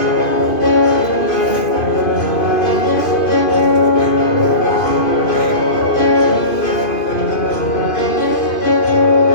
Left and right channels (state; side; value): late; right; 2.5 ms